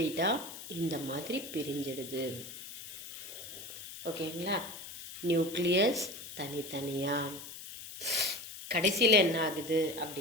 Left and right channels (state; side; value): noise; left; hiss, 11 dB below the sound